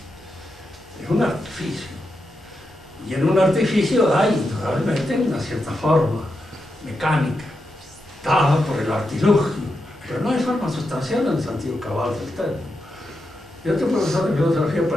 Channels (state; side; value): normal; both; correlation 0.86